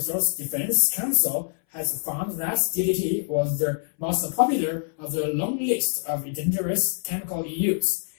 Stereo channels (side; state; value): right; silent; 60 dB below the other